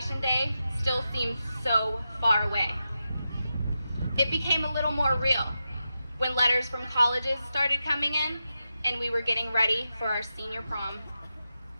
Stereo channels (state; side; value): inverted; both; correlation -0.89